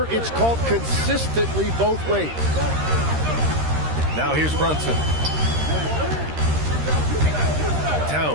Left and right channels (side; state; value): left; late; 13 ms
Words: it's called consistently both ways. Now here's Brunson.